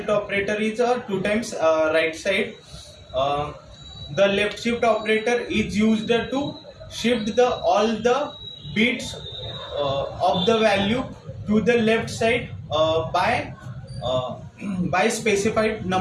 operator is two times right side. Uh, the left shift operator is used to shift the all the bits of the value to the left side uh, by specified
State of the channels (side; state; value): both; identical; correlation 1.00